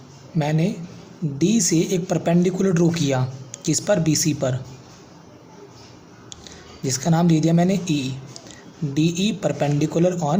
मैंने डी से एक परपेंडिकुलर ड्रॉ किया, किस पर, बी सी पर, जिसका नाम दे दिया मैंने E, D E perpendicular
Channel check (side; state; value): both; identical; correlation 1.00